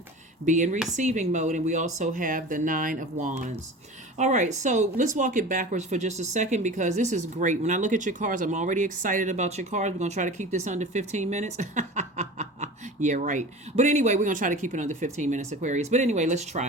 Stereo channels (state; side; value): normal; both; correlation 0.36